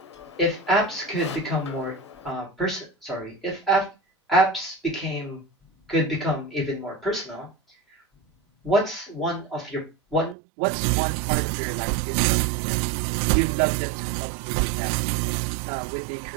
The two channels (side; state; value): left; drops out; at 10.4 s